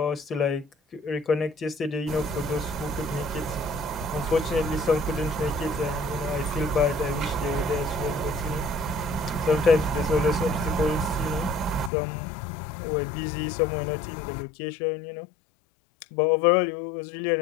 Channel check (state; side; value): drops out; right; at 11.9 s